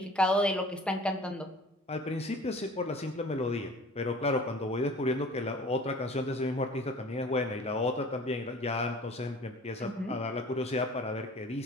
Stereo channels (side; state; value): both; normal; correlation 0.46